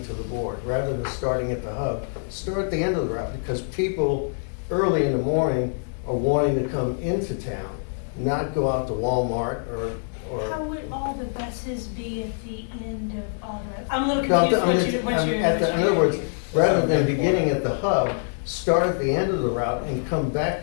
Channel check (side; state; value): right; silent; 62 dB below the other